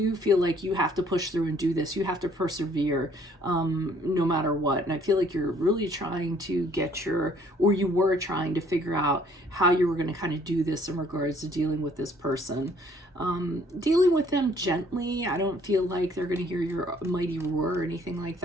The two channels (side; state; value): both; normal; correlation 0.61